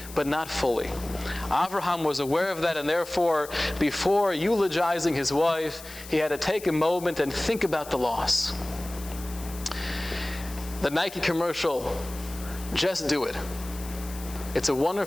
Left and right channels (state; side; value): noise; left; hiss, 15 dB below the sound